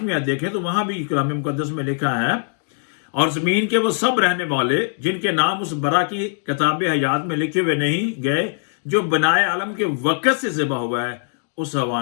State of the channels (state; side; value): silent; right; 65 dB below the other